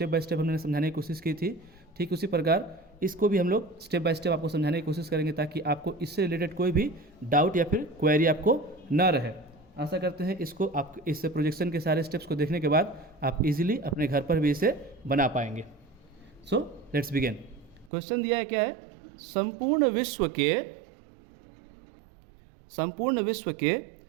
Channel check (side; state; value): left; drops out; at 17.9 s